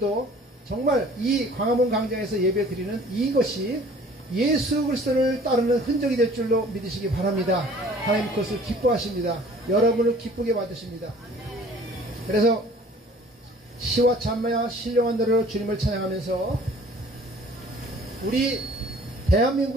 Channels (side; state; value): both; normal; correlation 0.51